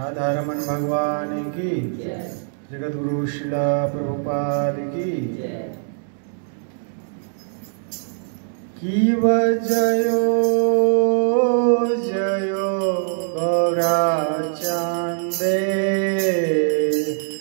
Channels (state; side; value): silent; left; digital silence